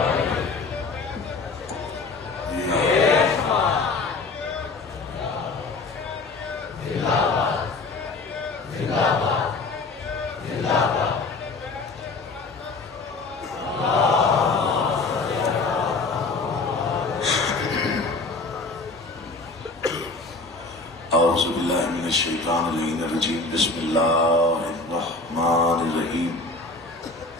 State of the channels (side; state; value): right; quieter; 3.7 dB